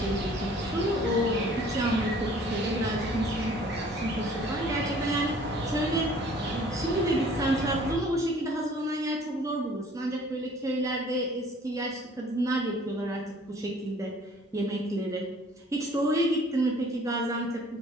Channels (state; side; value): normal; both; correlation 0.53